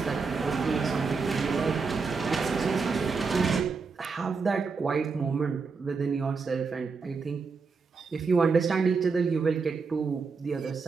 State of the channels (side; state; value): left; quieter; 4.8 dB